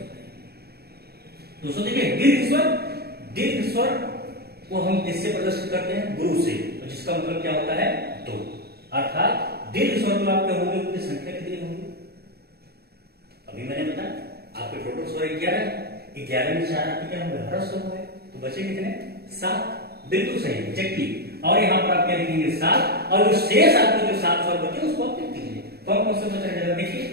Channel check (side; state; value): left; late; 0.46 ms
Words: दोस्तों देखिए, दीर्घ स्वर को हम किससे प्रदर्शित करते हैं? गुरु से, जिसका मतलब क्या होता है? 2। अर्थात दीर्घ स्वर जो आपके होंगे उनकी संख्या कितनी होगी? अभी मैंने बताया आपके टोटल स्वर 11 में 4 आपके क्या होंगे? हर्ष स्वर होंगे, तो बचे कितने? 7। बिल्कुल सही, एग्जैक्टली। और यहाँ पर आप क्या लिखेंगे? 7। और जो शेष आपके जो 7 स्वर बचे उसको आप लिख दीजिए। कौन कौन से बच रहे हैं? देखिए,